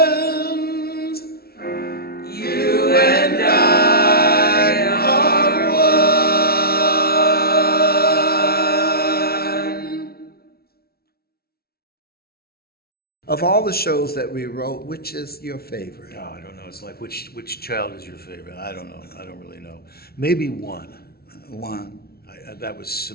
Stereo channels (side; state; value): right; late; 0.44 ms